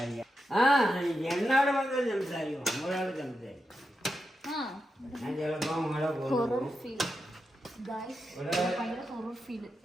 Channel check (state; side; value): normal; both; correlation 0.88